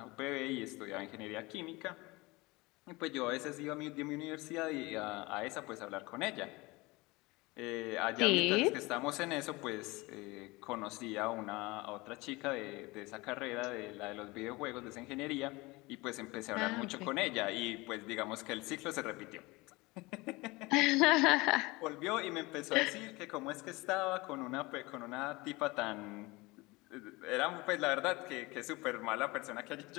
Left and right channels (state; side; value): quieter; right; 23.1 dB